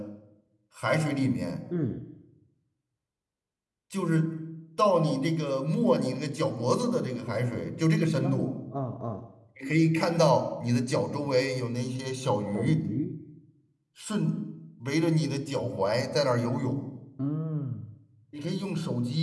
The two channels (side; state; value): both; identical; correlation 1.00